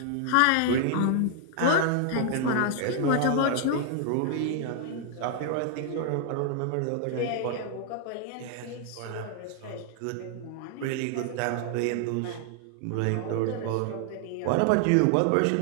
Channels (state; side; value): different; both; correlation 0.00